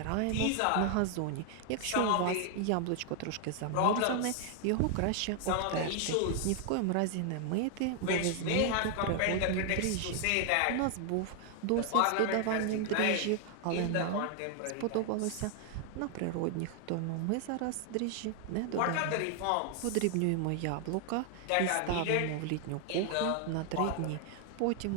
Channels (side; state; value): both; different; correlation 0.00